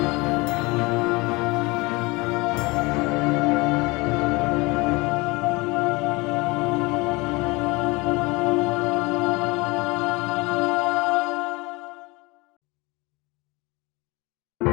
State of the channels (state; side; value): quieter; right; 24.4 dB